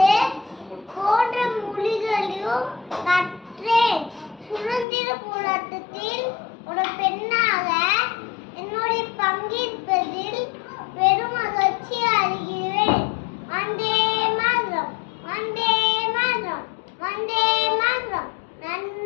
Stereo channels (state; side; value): drops out; right; at 4.9 s